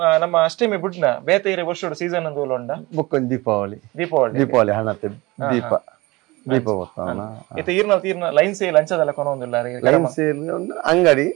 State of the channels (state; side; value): quieter; left; 22.2 dB